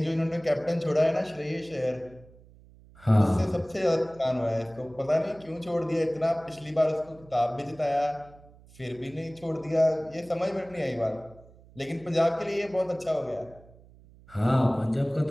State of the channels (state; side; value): noise; right; hum, 24 dB below the sound